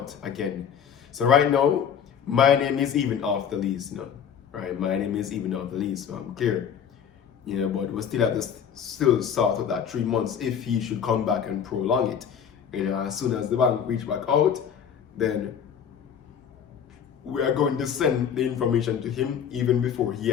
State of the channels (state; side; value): quieter; right; 8.0 dB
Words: again. So right now, my name is even off the lease, right? My name is even off the lease, so I'm clear. But we still have to still sort out that 3 months if he should come back and prolong it. As soon as the bank reach back out, then we are going to send the information to him even before he